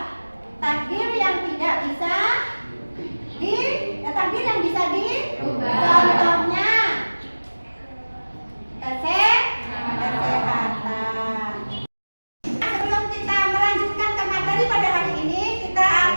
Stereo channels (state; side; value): inverted; both; correlation -1.00